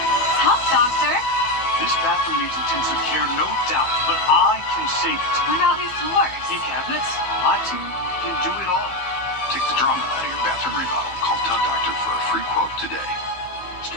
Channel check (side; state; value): right; late; 15 ms